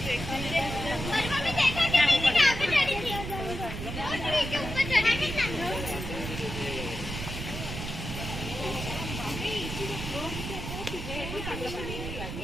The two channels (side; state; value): right; noise; rumble, 6 dB below the sound